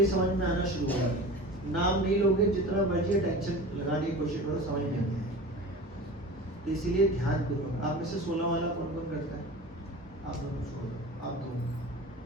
समझ में आना शुरू होगा। नाम नहीं लोगे, जितना मर्जी टेंशन लगाने की कोशिश करो, समझ में नहीं आएगा। तो इसीलिए ध्यान पूर्वक। आप में से 16 वाला कौन कौन करता है? आप दोनों छोड़ दो, आप 2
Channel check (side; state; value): both; normal; correlation 0.35